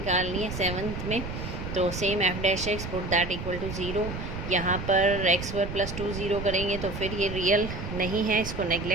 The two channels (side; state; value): right; noise; rumble, 7 dB below the sound